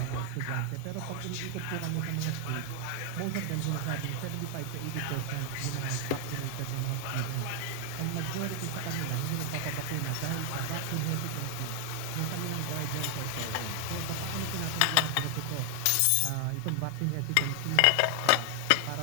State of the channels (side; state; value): both; different; correlation 0.00